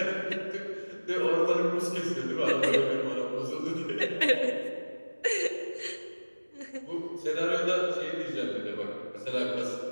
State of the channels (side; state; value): both; inverted; correlation -1.00